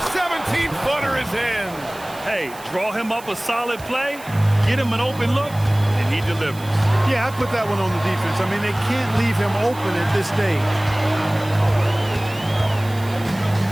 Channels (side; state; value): right; noise; hiss, 19 dB below the sound